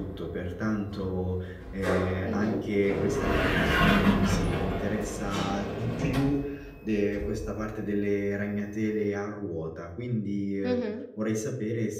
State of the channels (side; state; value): both; identical; correlation 1.00